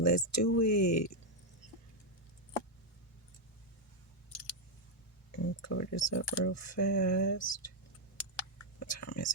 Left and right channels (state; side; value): normal; both; correlation 0.01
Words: do it. Cover this up real fast. What time is